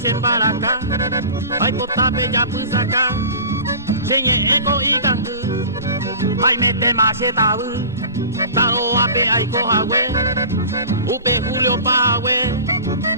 sin baraka, ay potape ya pu saca, senye eko y gangu, ay mete maceta bu, taro ape ay cojawe, upe Julio Pahue,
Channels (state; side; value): inverted; both; correlation -0.38